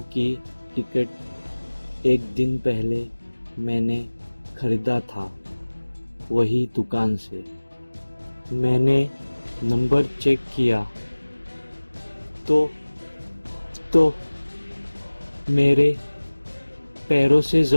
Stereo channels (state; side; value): inverted; both; correlation -1.00